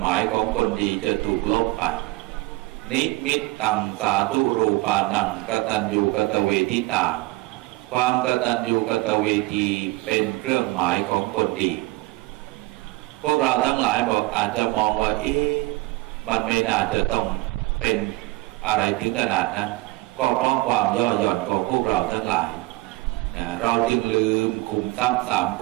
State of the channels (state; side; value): quieter; left; 20.8 dB